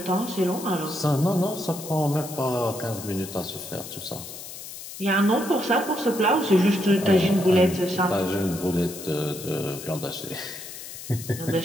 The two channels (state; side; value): noise; left; hiss, 12 dB below the sound